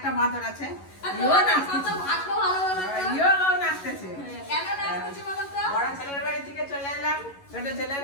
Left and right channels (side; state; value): right; late; 11 ms